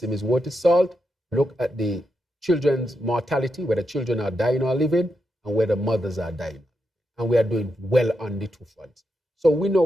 is worth its salt, look at the children's mortality, whether children are dying or living, and whether mothers are dying. And we are doing well on the 2 fronts. So we know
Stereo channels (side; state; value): both; normal; correlation 0.85